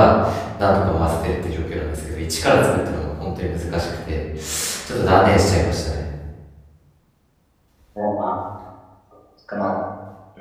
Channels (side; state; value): both; identical; correlation 1.00